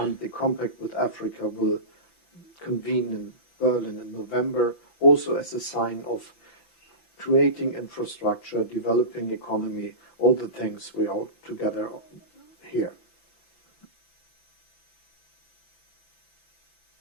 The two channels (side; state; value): right; late; 5.9 ms